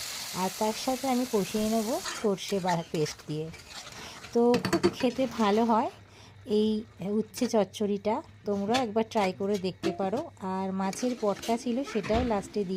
আর তার সাথে আমি কষিয়ে নেব সর্ষে পেস্ট দিয়ে। তো খুবই খেতে ভালো হয় এই উচ্ছে চচ্চড়িটা, তোমরা একবার ট্রাই করে দেখতে পারো। আর মাছের পটকা ছিল, সেটাও লাস্টে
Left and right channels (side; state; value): both; identical; correlation 1.00